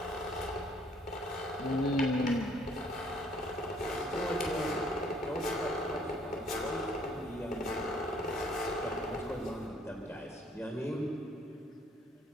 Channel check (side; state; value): both; normal; correlation 0.62